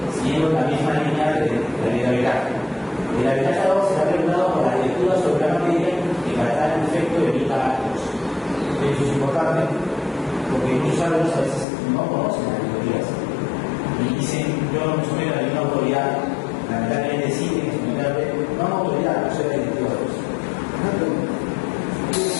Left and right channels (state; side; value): drops out; right; at 11.7 s